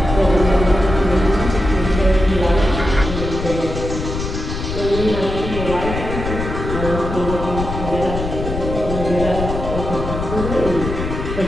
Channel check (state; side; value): noise; left; rumble, 5 dB below the sound